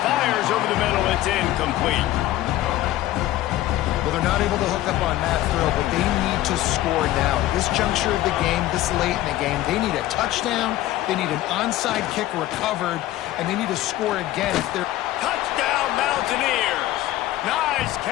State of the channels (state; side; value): quieter; right; 15.0 dB